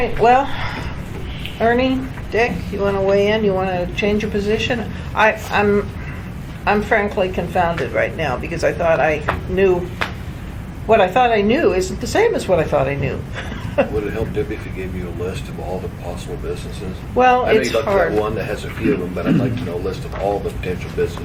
well, Ernie, Dick, you want to weigh in? You want to change your position? I'm frankly confounded right now because I thought I knew, what I thought I knew isn't the same as what I thought I knew. Would it help, Debbie, if he gave you a list of all the possible businesses? Well, I know it's you looked hard. at one that has a few of them, but I'd like to know a list of all the potential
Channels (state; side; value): identical; both; correlation 1.00